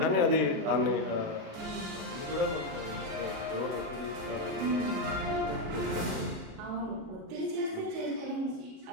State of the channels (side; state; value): left; late; 37 ms